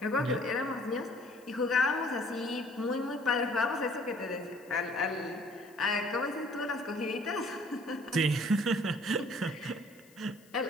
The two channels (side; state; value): left; noise; hiss, 27 dB below the sound